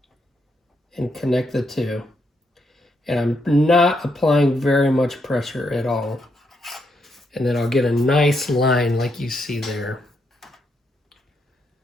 and connect the two. And I'm not applying very much pressure at all. And then I'll get a nice line like you see there.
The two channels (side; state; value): both; normal; correlation 0.78